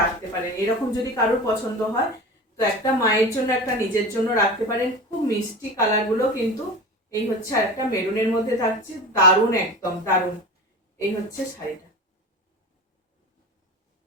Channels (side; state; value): both; normal; correlation 0.31